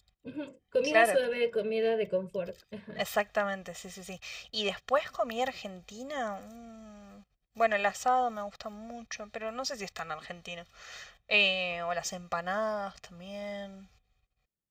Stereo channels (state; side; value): identical; both; correlation 1.00